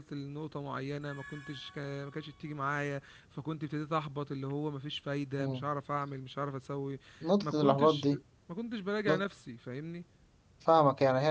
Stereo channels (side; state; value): both; identical; correlation 1.00